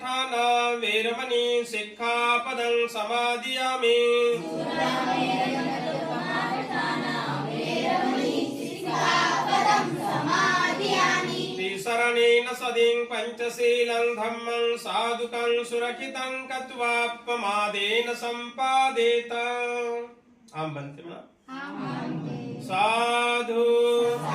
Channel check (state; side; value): identical; both; correlation 1.00